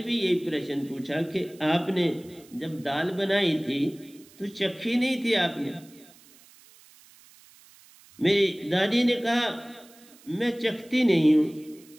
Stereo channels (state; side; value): noise; right; hiss, 25 dB below the sound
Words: भी यही प्रश्न पूछा कि आपने जब दाल बनाई थी तो चखी नहीं थी आपने? मेरी दादी ने कहा मैं चखती नहीं हूं,